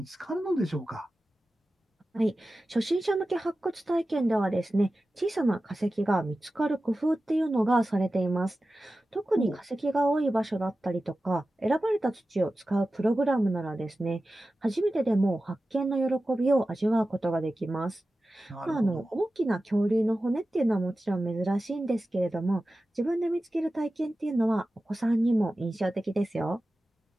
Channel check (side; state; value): both; normal; correlation 0.94